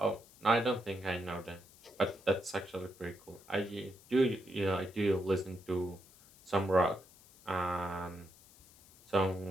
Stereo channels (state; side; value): noise; left; hiss, 24 dB below the sound